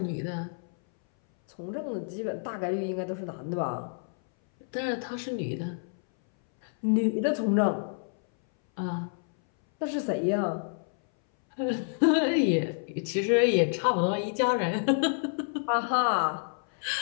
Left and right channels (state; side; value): silent; right; 59 dB below the other